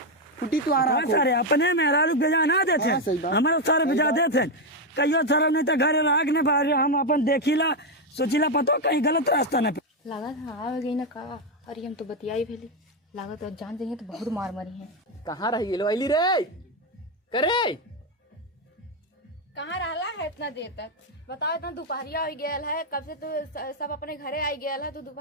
फुटी तू आ रहा हाँ, सारे अपने मेहरारू भेजा ना देते हाँ, सही बात। हमारे सारे भेजा देते कहियो सारा नहीं तो घरे राग ने बाहर हम अपन देखिला सोचिला पतो कहीं गलत रास्ता न लागत हाँ आ गई ना का अरे हम तो बतियाई भेली लागत और जान जाइए तो बहुत मार मरी है कहाँ रही गेलो अली रे करे कहाँ रहला है इतना देर तक बताओ इतना दोपहरिया हो गया है कब से तो सब अपने घरे आई गया है तो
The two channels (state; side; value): normal; both; correlation 0.05